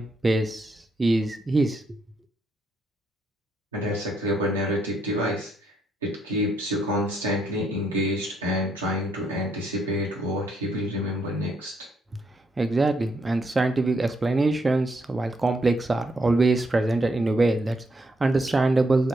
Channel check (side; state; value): both; normal; correlation 0.75